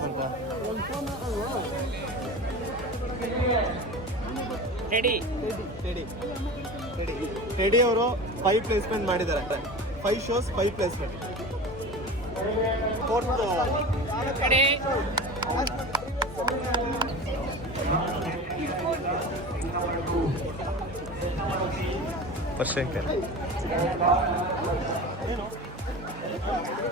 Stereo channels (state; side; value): normal; both; correlation 0.32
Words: ಬಂತ. ಟೆಡಿ ಅವರು 5 ಪ್ಲೇಸ್ಮೆಂಟ್ ಮಾಡಿದ್ದಾರೆ. 5 shows 5 ಪ್ಲೇಸ್ಮೆಂಟ್. ಫೋರ್ತ್ ಪರ್ಶಂಕರ್.